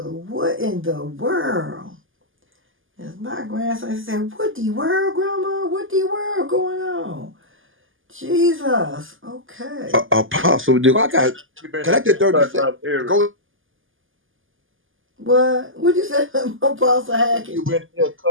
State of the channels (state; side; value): late; left; 0.58 ms